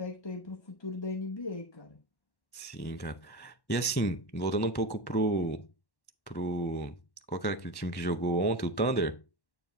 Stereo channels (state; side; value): late; right; 1.1 ms